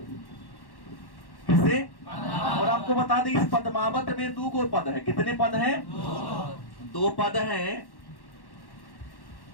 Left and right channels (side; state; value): right; late; 1.1 ms